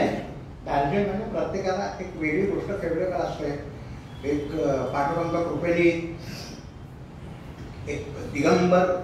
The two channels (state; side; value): identical; both; correlation 1.00